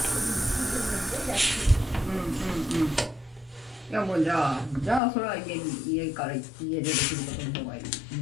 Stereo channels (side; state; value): right; drops out; at 5.0 s